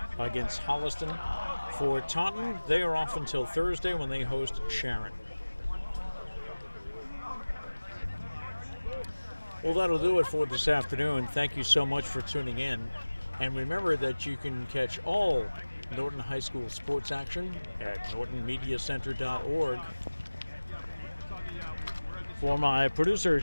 against Holliston. For Taunton, they are off until Thursday when they host Sharon. Well, that'll do it for this afternoon. Thank you so much for tuning in. And remember that you can catch all Norton High School sports action at nortonmediacenter.org. For my producer,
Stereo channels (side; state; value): both; inverted; correlation -1.00